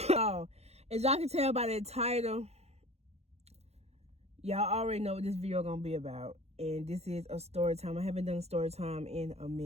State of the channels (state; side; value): late; left; 0.31 ms